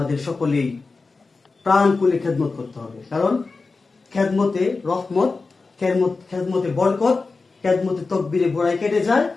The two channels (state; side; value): quieter; right; 4.0 dB